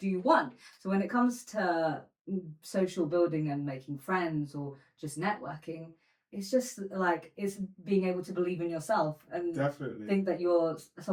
want. So when it comes to social building and making friends or just networking, it's just like it's being able to believe in yourself and Definitely think that you're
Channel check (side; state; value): both; identical; correlation 1.00